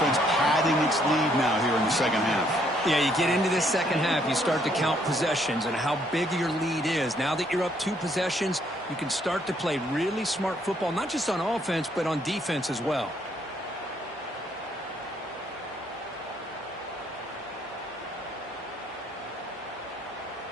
padding its lead now here in the second half. Yeah, you get into this second half, you start to count possessions and how big your lead is. Now that you're up 2 possessions, you can start to play really smart football, not just on offense, but on defense as well.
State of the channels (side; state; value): both; normal; correlation 0.69